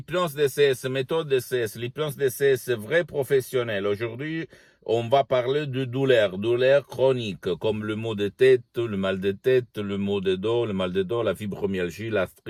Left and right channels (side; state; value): both; identical; correlation 1.00